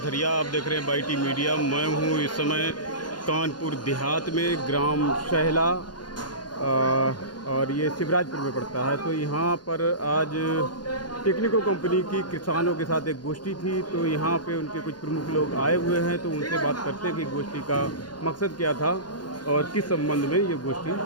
आप देख रहे हैं बाईटी मीडिया। मैं हूं इस समय कानपुर देहात में, ग्राम शहला, और ये शिवराजपुर में पड़ता है। तो यहाँ पर आज टेक्निको कंपनी की किसानों के साथ एक गोष्ठी थी। तो यहाँ पे उनके कुछ प्रमुख लोग आए हुए हैं, तो उनसे बात करते हैं कि गोष्ठी का मकसद क्या था और किस संबंध में ये गोष्ठी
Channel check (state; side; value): late; right; 0.70 ms